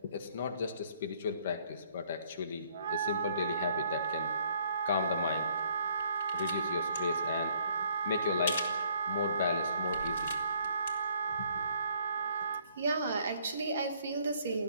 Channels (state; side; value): inverted; both; correlation -0.64